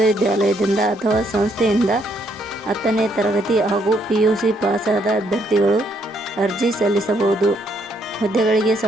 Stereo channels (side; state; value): both; normal; correlation 0.72